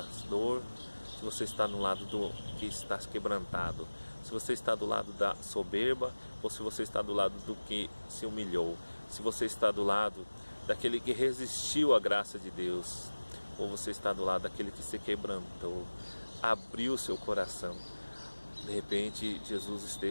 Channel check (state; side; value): inverted; both; correlation -1.00